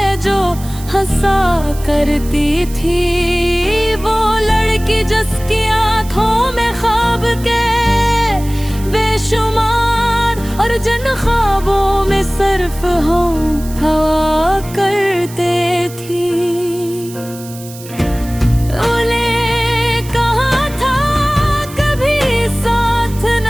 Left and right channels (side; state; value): right; noise; hiss, 17 dB below the sound